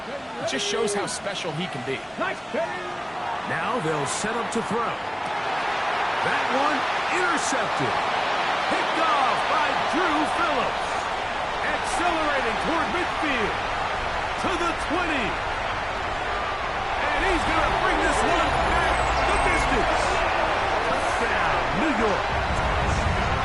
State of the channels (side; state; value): both; identical; correlation 1.00